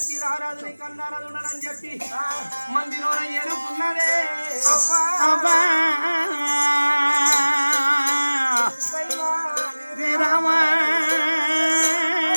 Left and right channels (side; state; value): both; inverted; correlation -1.00